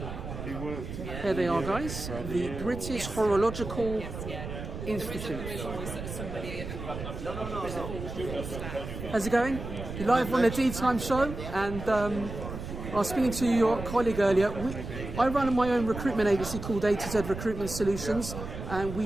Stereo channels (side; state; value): right; noise; rumble, 8 dB below the sound